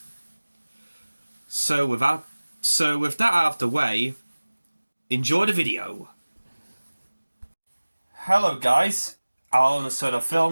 So with that out of the way, enjoy the video. Hello guys, Alan of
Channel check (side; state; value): both; inverted; correlation -1.00